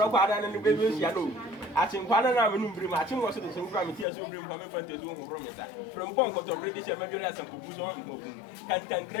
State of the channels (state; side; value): drops out; right; at 4.0 s